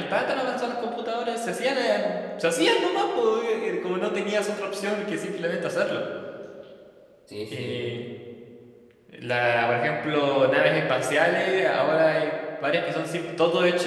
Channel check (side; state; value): both; identical; correlation 1.00